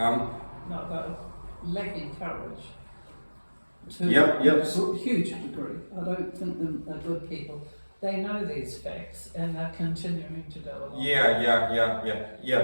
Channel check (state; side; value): inverted; both; correlation -1.00